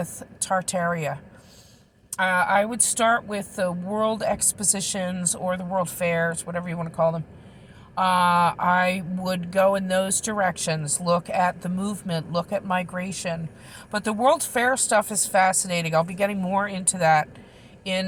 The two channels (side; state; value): both; identical; correlation 1.00